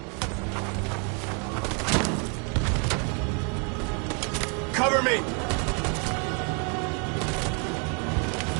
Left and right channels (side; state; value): left; quieter; 36.7 dB